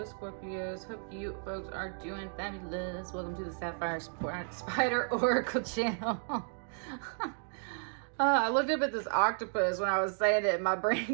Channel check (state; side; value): silent; left; digital silence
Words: Scorpios. Hope you folks are doing fabulous. Welcome to the Sapphire Spider Oracle channel. I looked up at this octopus when I was saying it and my brain